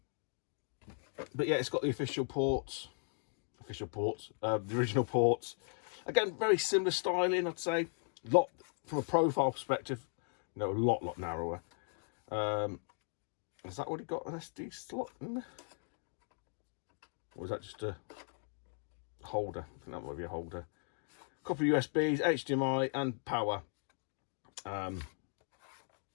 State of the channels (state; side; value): silent; right; 53 dB below the other